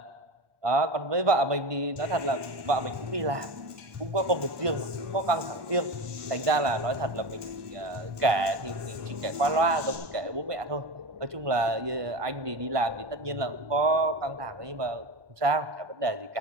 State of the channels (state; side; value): late; left; 1.2 ms